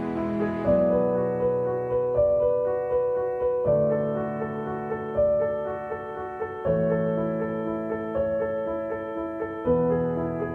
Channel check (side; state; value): both; identical; correlation 1.00